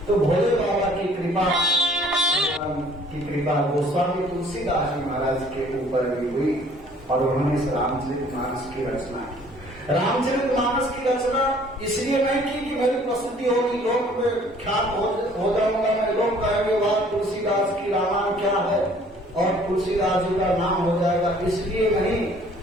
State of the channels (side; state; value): both; normal; correlation 0.56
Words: तो भोले बाबा की कृपा गोस्वामी तुलसीदास जी महाराज के ऊपर भी हुई और उन्होंने इस रामचरितमानस की रचना की। रामचरितमानस की रचना इसलिए नहीं की कि मेरी प्रसिद्धि होगी, लोक में ख्यात हो जाऊंगा मैं, लोग कहेंगे वाह तुलसीदास की रामायण क्या है और तुलसीदास जी का नाम हो जाएगा, इसलिए नहीं।